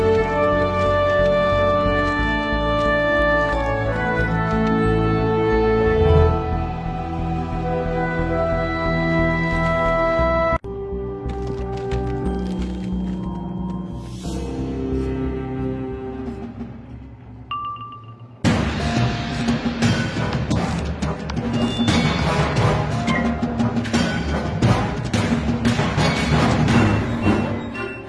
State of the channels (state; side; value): identical; both; correlation 1.00